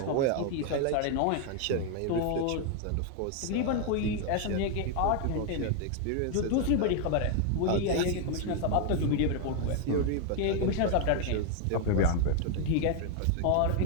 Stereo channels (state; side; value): different; both; correlation 0.01